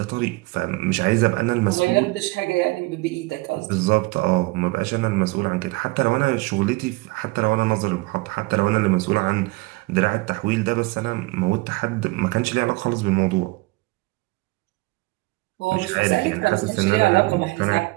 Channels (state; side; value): quieter; left; 23.5 dB